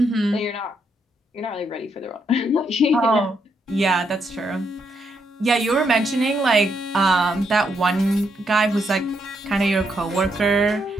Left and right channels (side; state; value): both; normal; correlation 0.77